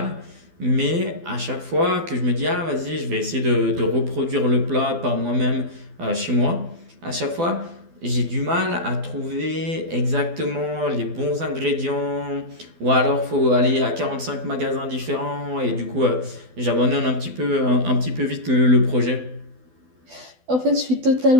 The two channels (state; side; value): late; left; 12 ms